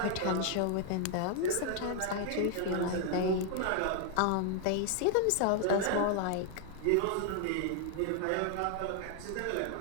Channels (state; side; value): different; both; correlation 0.00